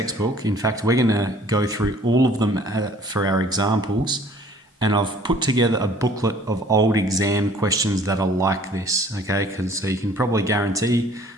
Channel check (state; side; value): normal; both; correlation 0.54